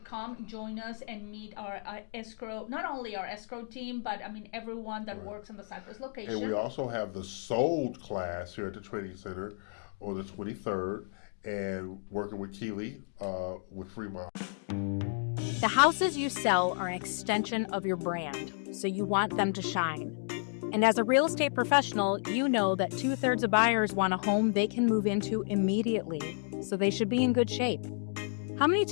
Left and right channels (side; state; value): right; silent; 56 dB below the other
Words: come join us and meet our escrow, not only our escrow team, but I mean everyone that works on the Cypress location. And we also have the Sold class here at the training center on the 23rd, and working with Keely with Fremont. The houses you sell are an extension of your brand, so you want them to shine. And as a real estate professional, you know that 2/3 of buyers want a home they can move into immediately, so they should be in good shape. How many